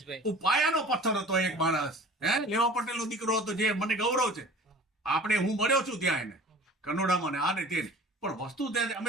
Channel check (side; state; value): both; normal; correlation 0.44